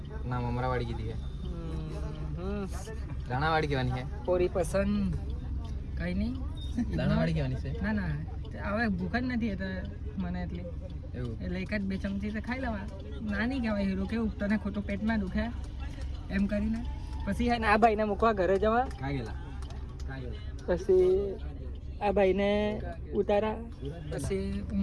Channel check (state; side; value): identical; both; correlation 1.00